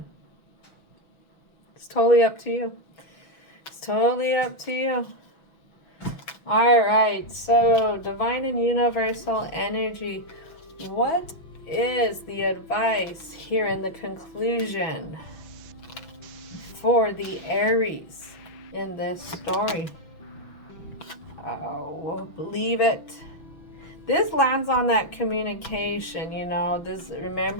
It's totally up to you. It's totally up to you. All right. So, divine and universal energy. What is the advice here in the conclusion for the Aries in this story? Oh, believe it. This lands on that communication, you know. This,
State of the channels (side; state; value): right; late; 6.0 ms